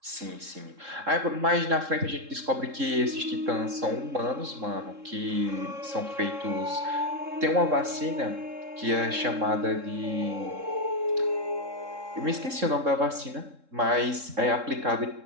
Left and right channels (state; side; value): late; left; 3.7 ms